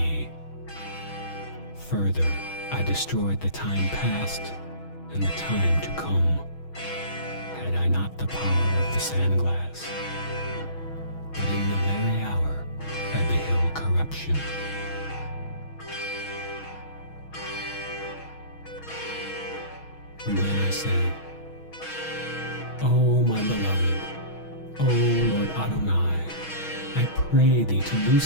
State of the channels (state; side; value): late; right; 6.2 ms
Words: Further, I destroyed the time past and the time to come, had I not the power of the sandglass. But in the very hour I beheld corruption. Then I said, O my beloved, O Lord Adonai, I pray thee to